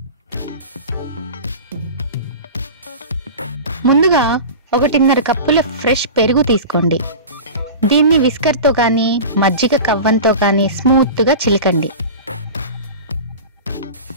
ముందుగా 1.5 కప్పుల ఫ్రెష్ పెరుగు తీసుకోండి. దీన్ని విస్కర్తో కానీ మజ్జిగ కవ్వంతో కానీ స్మూత్గా చిలకండి.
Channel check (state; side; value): inverted; both; correlation -0.32